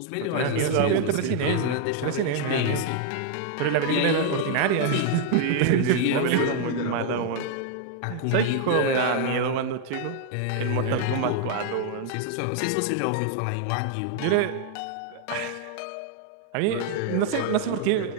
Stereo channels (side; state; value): both; different; correlation 0.00